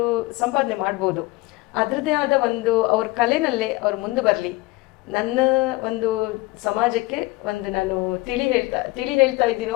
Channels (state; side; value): quieter; right; 21.0 dB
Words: ಸಂಪಾದನೆ ಮಾಡ್ಬೋದು. ಅದರದ್ದೇ ಆದ ಒಂದು ಅವ್ರ ಕಲೆನಲ್ಲೇ ಅವ್ರು ಮುಂದೆ ಬರಲಿ. ನನ್ನ ಒಂದು ಸಮಾಜಕ್ಕೆ ಒಂದು ನಾನು ತಿಳಿ ಹೇಳ್ತಾ